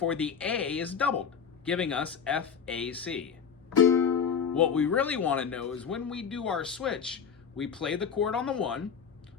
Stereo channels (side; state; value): right; quieter; 6.8 dB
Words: the A is doubled, giving us F-A-C. What we really want to know is when we do our switch, we play the chord on the 1.